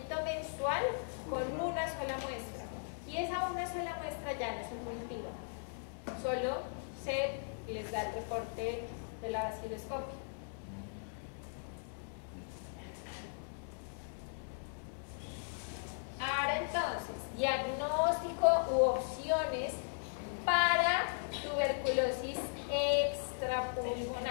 mensual con una sola muestra. Y esa una sola muestra ya no es un cultivo. Solo se les da el reporte de la vaciloscopia. Ahora entonces, diagnóstico u opciones para tuberculosis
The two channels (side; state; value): right; silent; digital silence